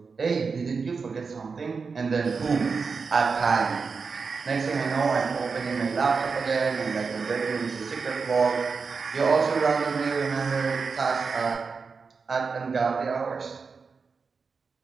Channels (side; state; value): left; quieter; 5.0 dB